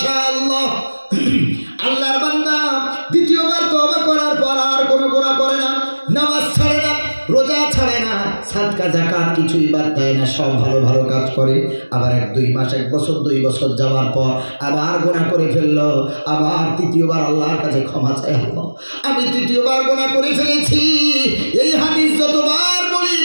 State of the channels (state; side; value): inverted; both; correlation -1.00